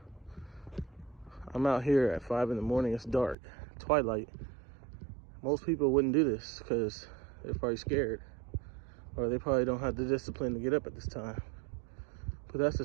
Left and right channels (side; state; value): left; drops out; at 3.4 s